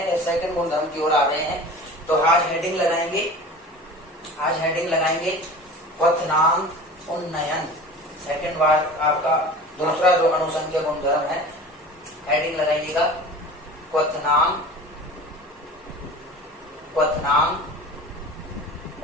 सेकंड गुणधर्म की ओर आ रहे हैं। तो आज हेडिंग लगाएंगे क्वथनांक उन्नयन। सेकंड बार आपका दूसरा जो अणुसंख्यक गुणधर्म है, हेडिंग लगाइएगा क्वथनांक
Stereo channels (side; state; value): both; normal; correlation 0.38